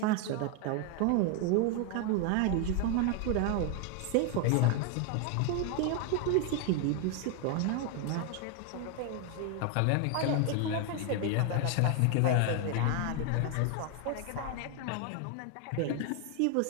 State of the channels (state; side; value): different; both; correlation 0.01